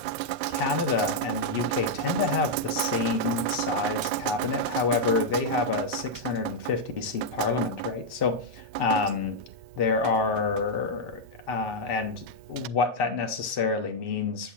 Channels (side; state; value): left; late; 2.1 ms